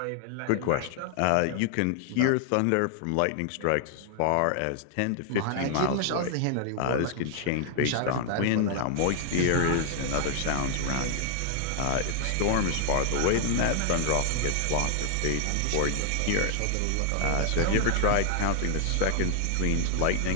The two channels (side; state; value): both; different; correlation 0.00